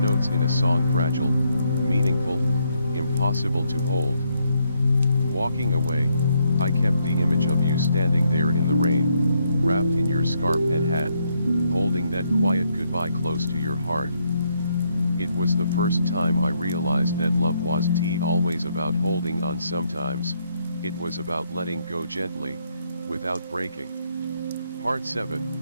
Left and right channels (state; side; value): inverted; both; correlation -0.75